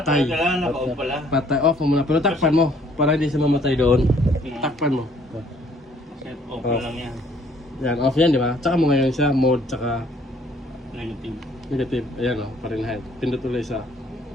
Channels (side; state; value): both; normal; correlation 0.61